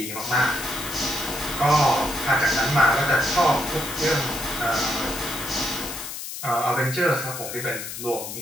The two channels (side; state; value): left; noise; hiss, 8 dB below the sound